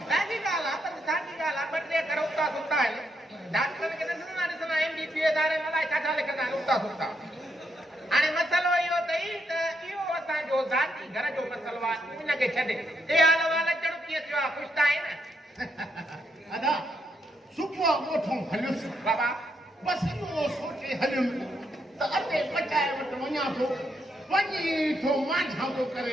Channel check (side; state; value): both; normal; correlation 0.78